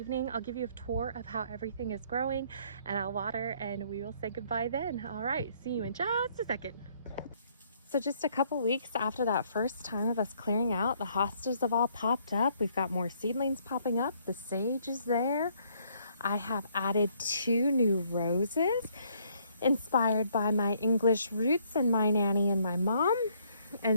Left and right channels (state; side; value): inverted; both; correlation -0.66